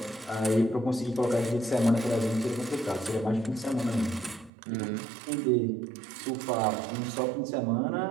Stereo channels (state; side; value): drops out; left; at 4.5 s